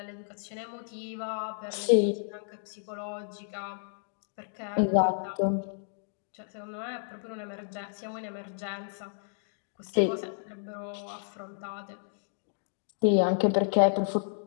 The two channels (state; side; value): silent; right; digital silence